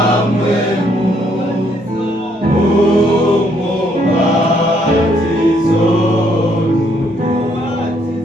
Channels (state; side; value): normal; both; correlation 0.70